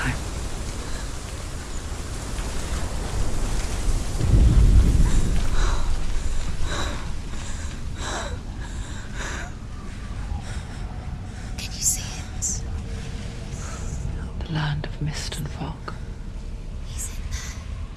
Can you see it? The land of mist and fog.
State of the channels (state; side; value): identical; both; correlation 1.00